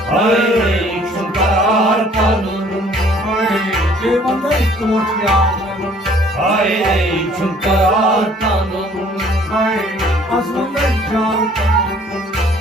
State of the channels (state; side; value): normal; both; correlation 0.57